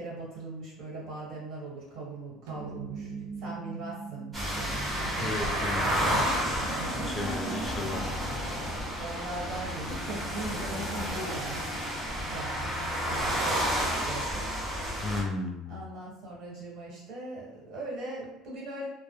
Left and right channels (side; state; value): both; normal; correlation 0.53